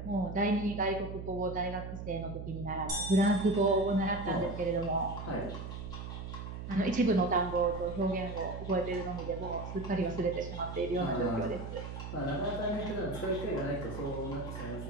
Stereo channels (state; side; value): noise; right; hum, 8 dB below the sound